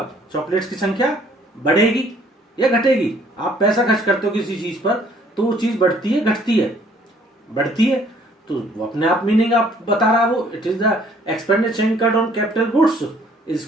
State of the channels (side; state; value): both; normal; correlation 0.60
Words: चॉकलेट्स की संख्या बढ़ेगी या घटेगी। आप पैसा खर्च करते हो किसी चीज पर तो वो चीज बढ़ती है घटती है, बढ़ती है, तो वो अपने आप मीनिंग आप बता रहा है वो। It is the expenditure incurred on capital goods is